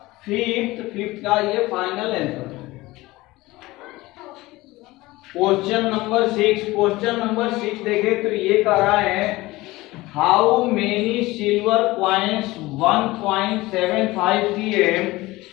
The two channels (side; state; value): right; quieter; 19.7 dB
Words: 5th का ये फाइनल आंसर। क्वेश्चन नंबर 6 देखे तो ये कह रहा है, how many silver coins 1.75 cm